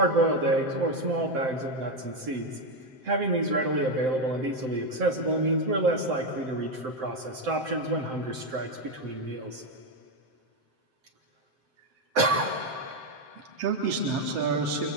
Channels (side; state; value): left; late; 7.7 ms